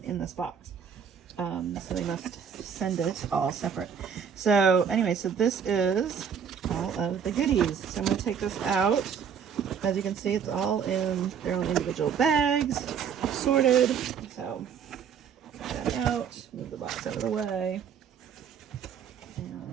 in this box. So they must send it all separate. So anyway, so this is all of the goodies. So I'm going to take this out. As you can see, it's all in their own individual bags, sorted. So take that out, move the box out of the way,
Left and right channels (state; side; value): quieter; left; 7.4 dB